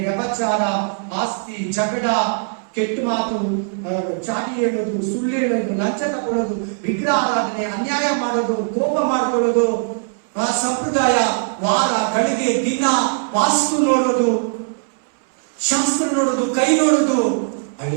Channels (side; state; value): left; silent; 64 dB below the other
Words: ವ್ಯಭಚಾರ, ಆಸ್ತಿ, ಜಗಳ, ಕೆಟ್ಟ ಮಾತು, ಚಾಟಿ ಹೇಳೋದು, ಸುಳ್ಳು ಹೇಳೋದು, ಲಂಚ ತಗೊಳ್ಳೋದು, ವಿಗ್ರಹ ಆರಾಧನೆ, ಅನ್ಯಾಯ ಮಾಡೋದು, ಕೋಪ ಮಾಡ್ಕೊಳ್ಳೋದು, ಸಂಪ್ರದಾಯ, ವಾರ, ಗಳಿಗೆ, ದಿನ, ವಾಸ್ತು ನೋಡೋದು, ಶಾಸ್ತ್ರ ನೋಡೋದು, ಕೈ ನೋಡೋದು,